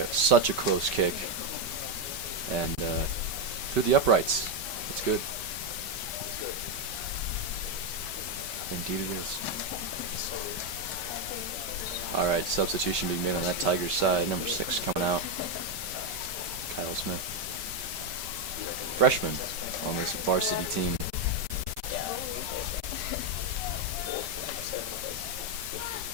such a close kick. And through the uprights. It's good. Indeed it is. All right, substitution being made on that Tigers side. Number 6 coming out. Kyle Smith. Freshman on this varsity team.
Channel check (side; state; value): left; late; 5.2 ms